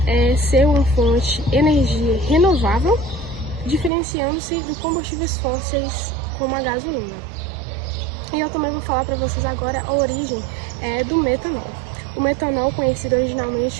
ser uma fonte de energia renovável, diferenciando-se de combustíveis fósseis como a gasolina. E eu também vou falar para vocês agora a origem do metanol. O metanol, conhecido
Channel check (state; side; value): drops out; left; at 3.9 s